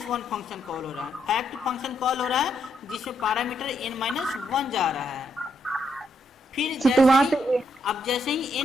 फंक्शन कॉल हो रहा है। फैक्ट फंक्शन कॉल हो रहा है जिसमें पैरामीटर n-1 जा रहा है। फिर जैसे ही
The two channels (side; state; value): both; normal; correlation 0.77